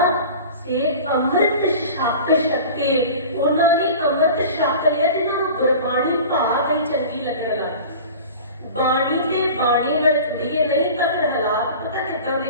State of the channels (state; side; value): inverted; both; correlation -0.38